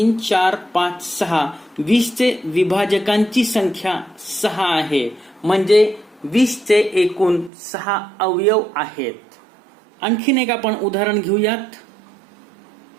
4 5 6. 20चे विभाजकांची संख्या 6 आहे. म्हणजे 20चे एकूण 6 अवयव आहेत. आणखीन एक आपण उदाहरण घेऊयात.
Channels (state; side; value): drops out; left; at 7.5 s